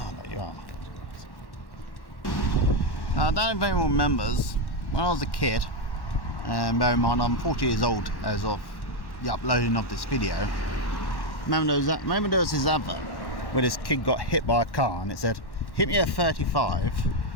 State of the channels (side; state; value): right; late; 1.1 ms